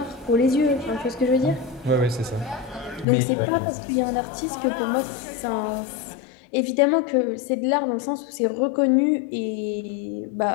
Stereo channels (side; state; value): right; drops out; at 3.1 s